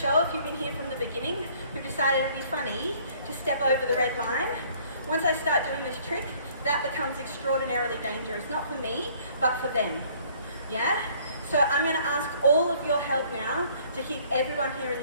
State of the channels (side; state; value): both; inverted; correlation -0.58